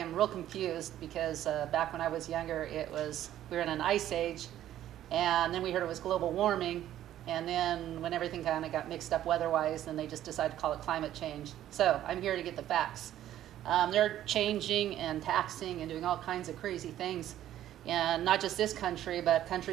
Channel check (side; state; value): left; quieter; 12.3 dB